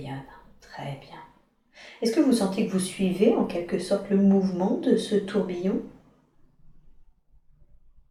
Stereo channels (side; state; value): both; identical; correlation 1.00